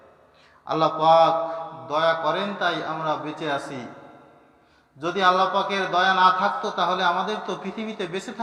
আল্লাহ পাক দয়া করেন তাই আমরা বেঁচে আছি। যদি আল্লাহ পাকের দয়া না থাকতো, তাহলে আমাদের তো পৃথিবীতে বেঁচে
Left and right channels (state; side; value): identical; both; correlation 1.00